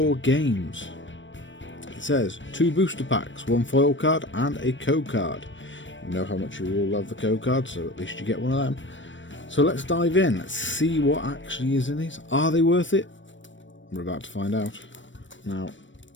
Games. It says 2 booster packs, 1 foil card and a code card. You know how much you all love the code card, so at least you get one of them. So let's dive in. Let's see what actually is in these. Are they worth it? We're about to find out. Now,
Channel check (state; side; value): late; right; 0.55 ms